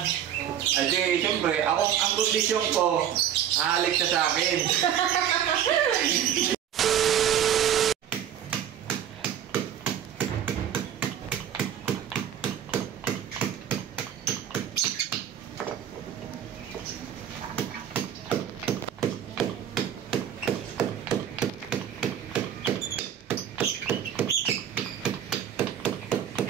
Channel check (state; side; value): quieter; left; 9.7 dB